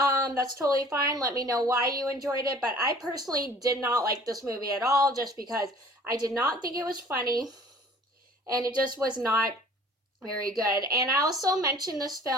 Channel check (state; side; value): normal; both; correlation 0.50